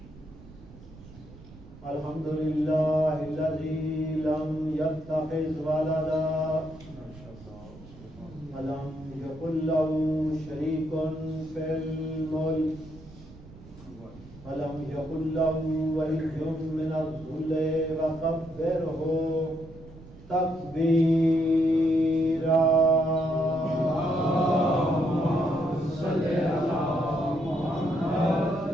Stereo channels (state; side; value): noise; right; rumble, 20 dB below the sound